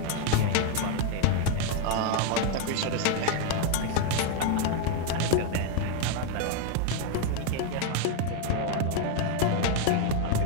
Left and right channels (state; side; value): different; both; correlation 0.01